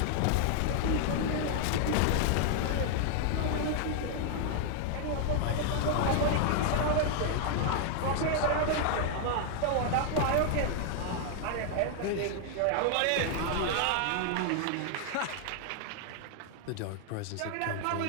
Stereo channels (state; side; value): different; both; correlation 0.00